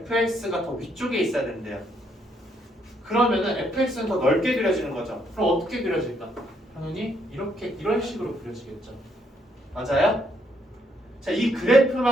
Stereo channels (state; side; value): normal; both; correlation 0.72